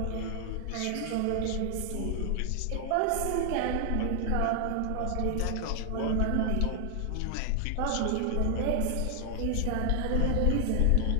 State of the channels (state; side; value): different; both; correlation 0.00